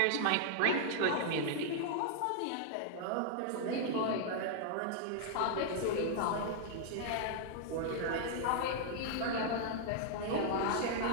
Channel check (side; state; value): both; different; correlation -0.01